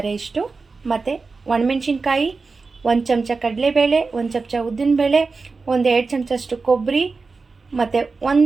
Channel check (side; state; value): left; quieter; 4.2 dB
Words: ಇಷ್ಟು, ಮತ್ತು ಒಣಮೆಣ್ಸಿನ್ಕಾಯಿ, 1 ಚಮಚ ಕಡಲೆಬೇಳೆ, 1 ಚಮಚ ಉದ್ದಿನಬೇಳೆ, 1-2 ಚಮಚಷ್ಟು ಕೊಬ್ಬರಿ, ಮತ್ತು